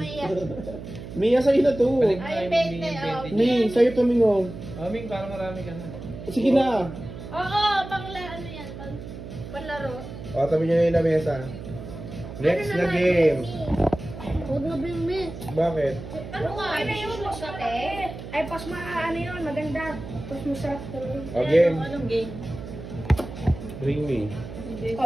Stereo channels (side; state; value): right; noise; hum, 11 dB below the sound